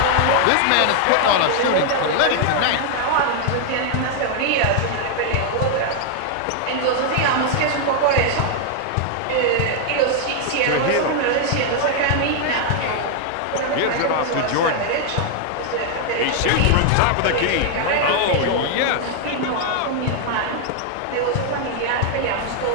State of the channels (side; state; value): both; different; correlation 0.00